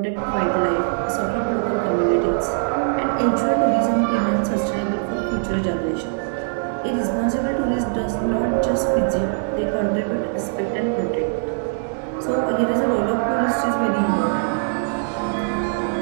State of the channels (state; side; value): silent; left; 64 dB below the other